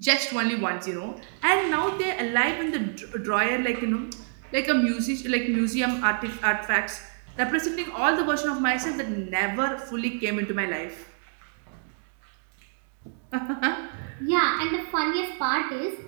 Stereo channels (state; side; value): silent; left; 60 dB below the other